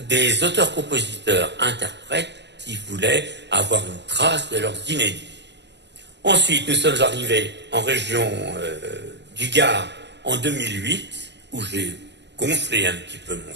des auteurs-compositeurs, interprètes qui voulaient avoir une trace de leurs inédits. Ensuite, nous sommes arrivés en région du Gard en 2008, où j'ai gonflé un petit peu mon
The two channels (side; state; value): left; late; 0.51 ms